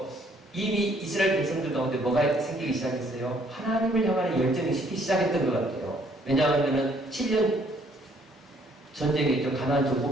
이미 이스라엘 백성들 가운데 뭐가 생기기 시작했어요? 하나님을 향하는 열정이 식기 시작했던 것 같아요. 왜냐하면 7년 전쟁이 있죠. 가나안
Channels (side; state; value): both; normal; correlation 0.64